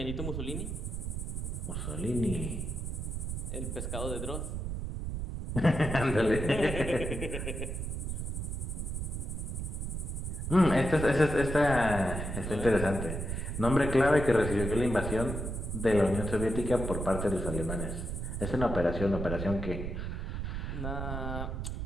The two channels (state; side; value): noise; right; rumble, 4 dB below the sound